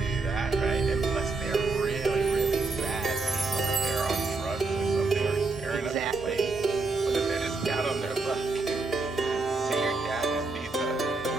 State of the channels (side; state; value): left; quieter; 3.7 dB